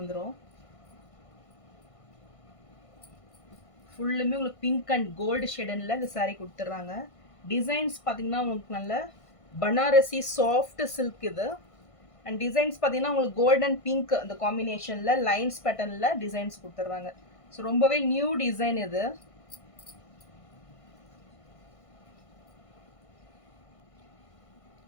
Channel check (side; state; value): right; late; 1.5 ms